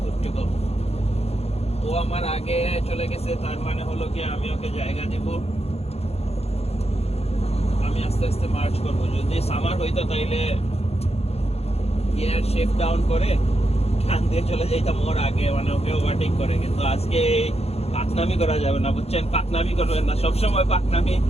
গুড টু গো। ও আমার আগে চলে গেছে, তার মানে হলো কি আমি ওকে জায়গা দিব, আমি আস্তে আস্তে মার্চ করবো। যদি সামার হইতো তাইলে গিয়ার শিফট ডাউন করে টান দিয়ে চলে যাইতাম ওর আগে, মানে ওকে ওভারটেক করে। কিন্তু আজকে পাকনামি করা যাবে না, বুঝছেন, পাকনামি করবেন না, সবসময় পাকনামি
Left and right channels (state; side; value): late; right; 0.30 ms